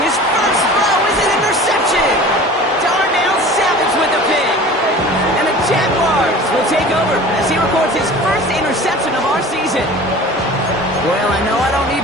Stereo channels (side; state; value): both; normal; correlation 0.40